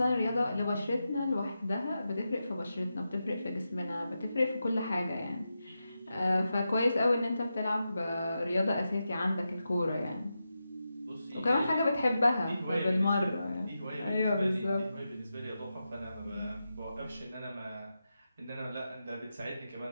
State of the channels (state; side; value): inverted; both; correlation -0.90